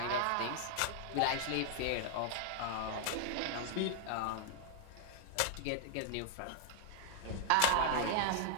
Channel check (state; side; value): different; both; correlation 0.00